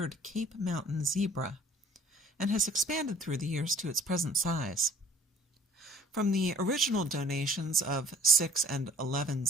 Cape Mountain zebra and has expanded through the years to its present size. From the original donations of 6 and 11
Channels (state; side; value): normal; both; correlation 0.53